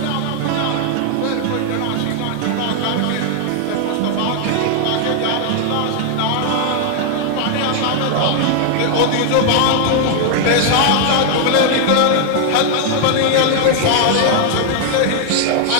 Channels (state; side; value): different; both; correlation 0.00